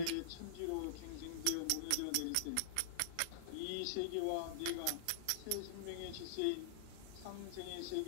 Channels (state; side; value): different; both; correlation -0.02